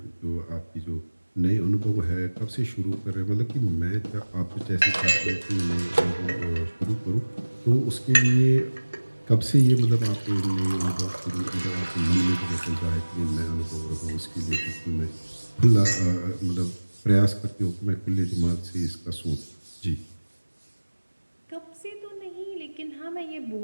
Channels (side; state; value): both; inverted; correlation -1.00